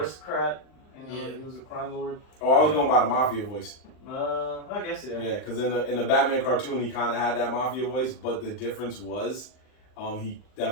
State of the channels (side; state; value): right; late; 39 ms